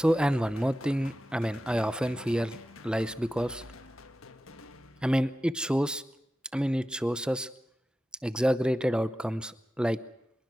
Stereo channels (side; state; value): both; normal; correlation 0.93